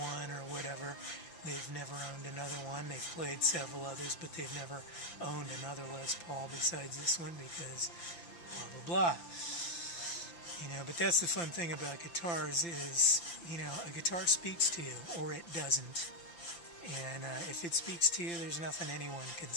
or whatever, they've never owned another one. They've played several others, but they've never owned another Les Paul besides this one because blah, blah, blah. But that's the fun thing about guitars is, a guitar speaks to you, or it doesn't. And if it speaks to you, there's nothing anyone can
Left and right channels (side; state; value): right; late; 5.9 ms